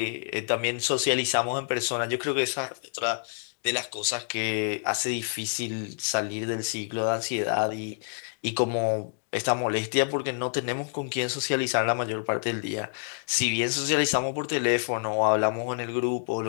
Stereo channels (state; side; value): silent; right; digital silence